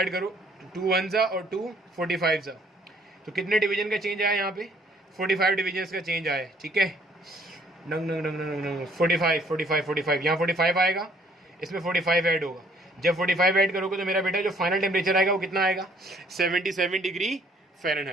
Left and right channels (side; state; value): both; normal; correlation 0.62